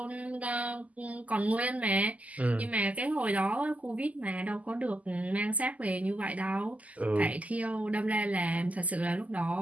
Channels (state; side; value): late; left; 0.074 ms